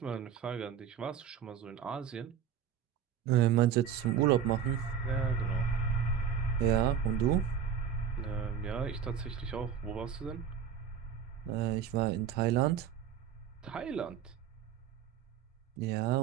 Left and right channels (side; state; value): left; quieter; 8.1 dB